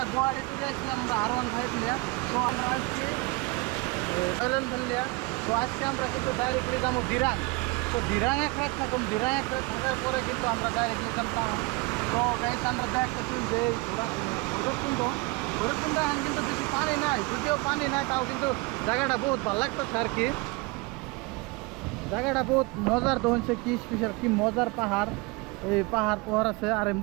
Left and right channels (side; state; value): left; quieter; 25.7 dB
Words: গুয়াহাটি থেকে আসছিলাম আমরা R15 নিয়ে। তো আমরা আসছি রয়্যাল এনফিল্ড। তো আজকে আমরা কিন্তু ডাইরেক্টলি যাবো দিরাং। তো দিরাং এক রাত থাকুন, দিরাং এক রাত থাকার পরে কিন্তু আমরা ডাইরেক্টলি যাবো। তো গাইস আমরা দেখতেছি যে ভৈরবকুণ্ড এখন কিন্তু বেশি পানি নাই, যদিও পানি নাই তাও কিন্তু জায়গাটা বহুত ভালো লাগতেছে আর কি। জায়গাটা বহুত মজার তো হচ্ছে, কি স্পেশাল কি মজার পাহাড়। এই পাহাড় আছে আর